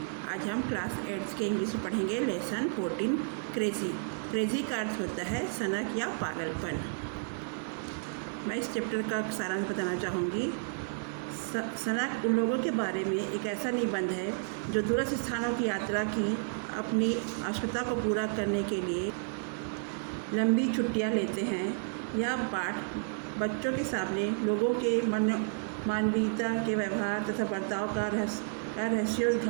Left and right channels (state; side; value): silent; left; digital silence